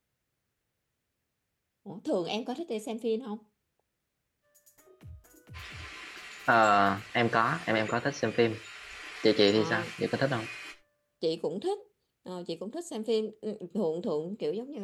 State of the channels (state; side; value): identical; both; correlation 1.00